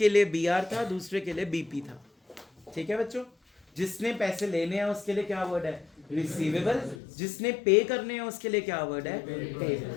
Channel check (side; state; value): right; drops out; at 7.0 s